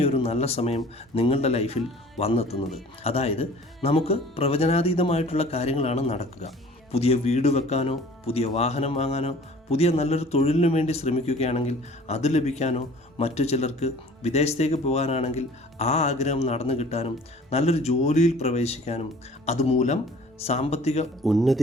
നല്ല സമയം നിങ്ങളുടെ ലൈഫിൽ വന്നെത്തുന്നത്. അതായത് നമുക്ക് പ്രവചനാതീതമായിട്ടുള്ള കാര്യങ്ങളാണ് നടക്കുക. പുതിയ വീട് വെക്കാനോ പുതിയ വാഹനം വാങ്ങാനോ പുതിയ നല്ലൊരു തൊഴിലിനു വേണ്ടി ശ്രമിക്കുകയാണെങ്കിൽ അത് ലഭിക്കാനോ, മറ്റു ചിലർക്ക് വിദേശത്തേക്ക് പോകാനാണെങ്കിൽ ആ ആഗ്രഹം നടന്നു കിട്ടാനും, നല്ലൊരു ജോലിയിൽ പ്രവേശിക്കാനും, അതുമൂലം സാമ്പത്തിക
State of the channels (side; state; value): both; normal; correlation 0.49